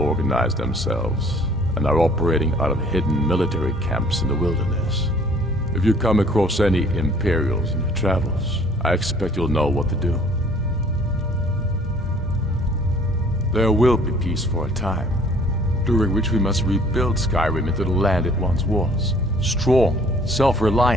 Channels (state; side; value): normal; both; correlation 0.55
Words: themselves and are operating out of hidden military camps in the wilderness. If you come across any Imperials in your travels, I expect you'll know what to do. There will be peace for a time, during which we must rebuild Skyrim into the land it once was. Strong,